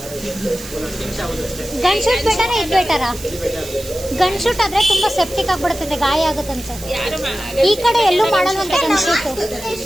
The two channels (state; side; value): noise; right; hiss, 14 dB below the sound